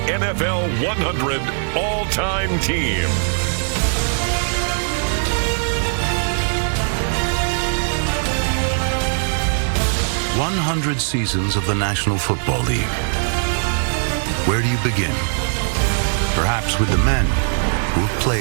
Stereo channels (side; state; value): left; silent; 66 dB below the other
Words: NFL 100 All-Time Team. "100 seasons of the National Football League." Where do you begin? Perhaps with the men who have